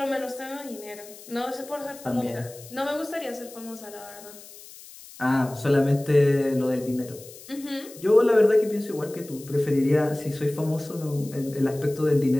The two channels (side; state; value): left; noise; hiss, 18 dB below the sound